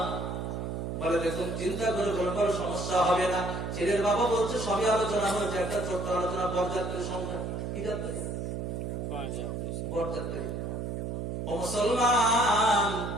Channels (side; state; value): right; noise; hum, 4 dB below the sound